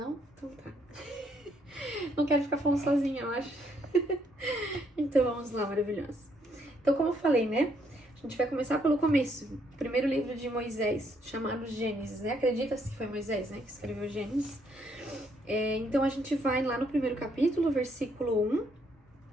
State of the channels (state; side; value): normal; both; correlation 0.71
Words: Então tá. Não quero ficar falando sozinha, eu acho. Então vamos lá, maravilhoso. Então, como eu falei, né? A gente vai começar pelo começo. O primeiro livro de Moisés, chamado Gênesis, né? Acredita-se que foi Moisés, né? Que escreveu Gênesis. Então a gente vai lá no primeiro capítulo, versículo 1